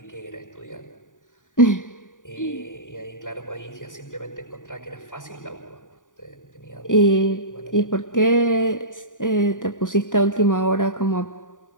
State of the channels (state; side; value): late; right; 0.88 ms